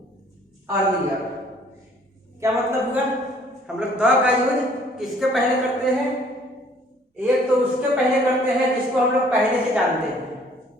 earlier। क्या मतलब हुआ? हम लोग द का यूज किसके पहले करते हैं? एक तो उसके पहले करते हैं जिसको हम लोग पहले से जानते हैं।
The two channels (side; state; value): both; normal; correlation 0.58